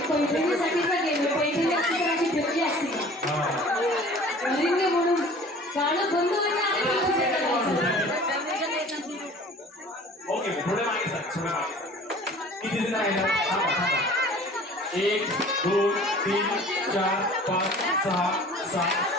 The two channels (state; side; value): normal; both; correlation 0.47